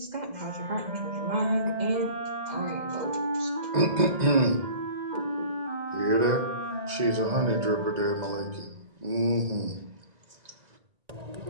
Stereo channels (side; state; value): left; late; 2.0 ms